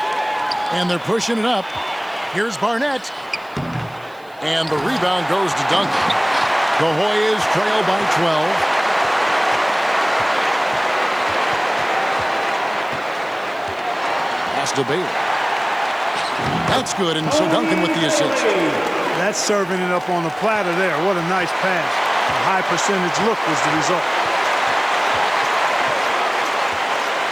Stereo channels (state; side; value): noise; right; hiss, 30 dB below the sound